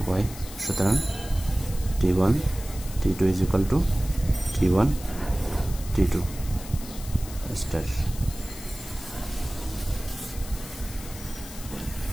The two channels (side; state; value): left; noise; hiss, 14 dB below the sound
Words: y। সুতরাং T1 T2 is equal to T1 T2 star।